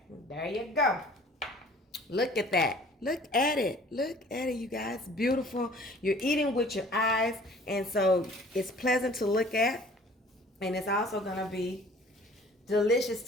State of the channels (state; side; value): normal; both; correlation 0.51